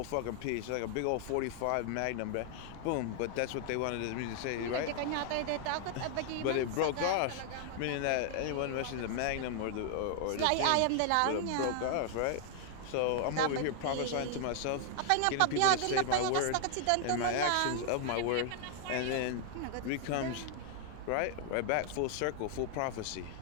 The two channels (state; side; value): different; both; correlation 0.00